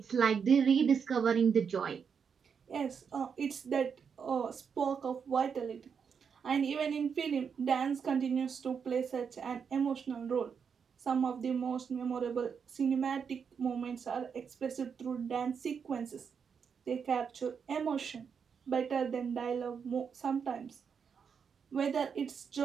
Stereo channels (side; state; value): left; quieter; 6.6 dB